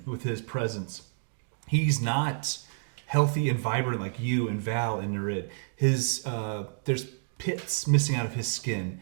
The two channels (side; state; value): left; silent; digital silence